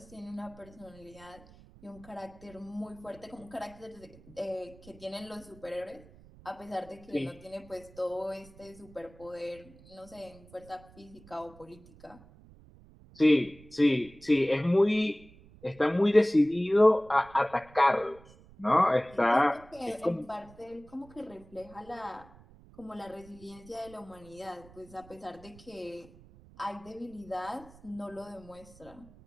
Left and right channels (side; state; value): right; noise; rumble, 23 dB below the sound